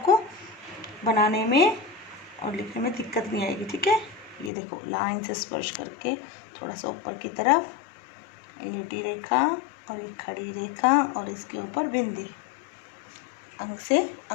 बनाने में और लिखने में दिक्कत नहीं आएगी। ठीक है, ये देखो, लाइन से स्पर्श करके थोड़ा सा ऊपर की तरफ लेटी रेखा और एक खड़ी रेखा और इसके ऊपर बिंदी। अंग से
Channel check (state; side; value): drops out; right; at 4.5 s